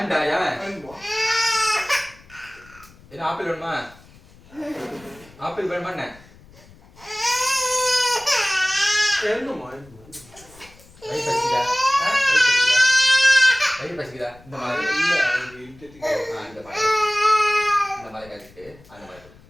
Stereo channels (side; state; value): left; noise; rumble, 25 dB below the sound